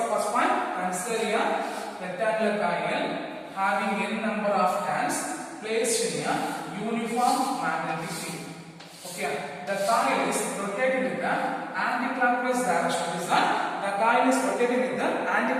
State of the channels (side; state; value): both; identical; correlation 1.00